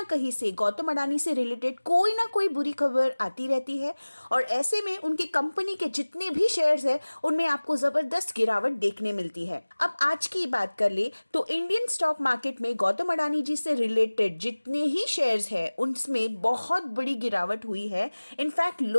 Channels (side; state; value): both; inverted; correlation -1.00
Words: कहीं से गौतम अडानी से रिलेटेड कोई ना कोई बुरी खबर आती रहती है और ऐसे में उनकी कंपनी के जितने भी शेयर्स हैं उनमें आपको जबरदस्त गिरावट देखने मिलती है। अब आज की बात कर ले तो इंडियन स्टॉक मार्केट में गौतम अडानी जी से रिलेटेड जितने ही शेयर्स हैं उनमें बहुत बड़ी गिरावट हुई है। इनफैक्ट